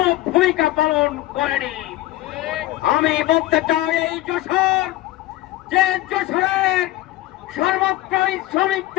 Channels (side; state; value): right; quieter; 16.4 dB